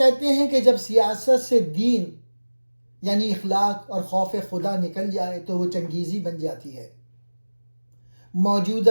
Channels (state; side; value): inverted; both; correlation -1.00